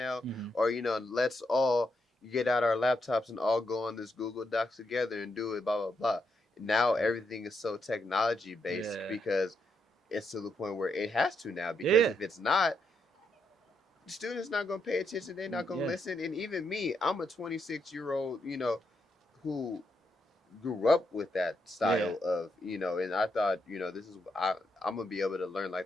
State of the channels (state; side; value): normal; both; correlation 0.80